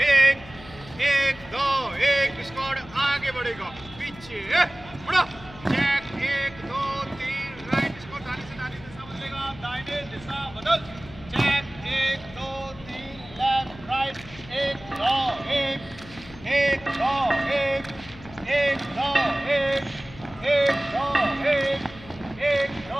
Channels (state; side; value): noise; left; hum, 18 dB below the sound